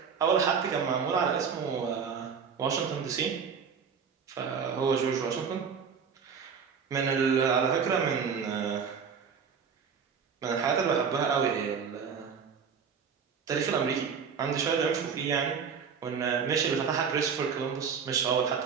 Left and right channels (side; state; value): left; quieter; 6.4 dB